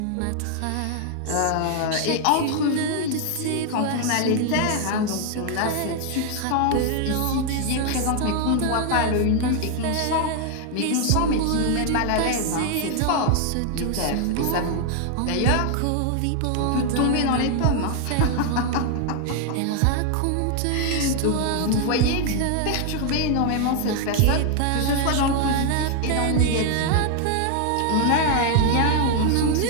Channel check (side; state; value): both; different; correlation 0.00